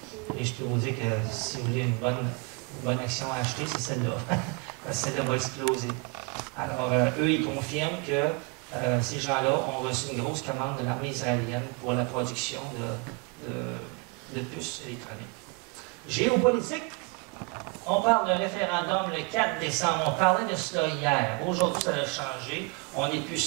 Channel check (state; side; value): quieter; left; 30.5 dB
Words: Et je peux vous dire que si vous voulez une bonne action à acheter, c'est celle-là. Celle-là va exploser. Alors, eux, ils confirment que ces gens-là ont reçu une grosse commande de l'armée israélienne pour la production de puces électroniques. Géopolitique. On parle d'un référendum le 4 décembre. On parlait de cela hier. Aujourd'hui, ça a changé. On n'est plus